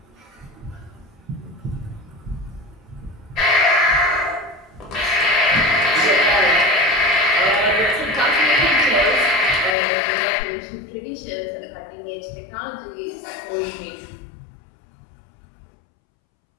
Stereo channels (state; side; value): drops out; right; at 9.8 s